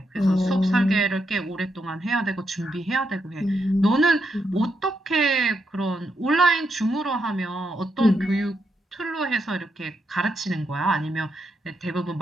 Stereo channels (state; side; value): normal; both; correlation 0.81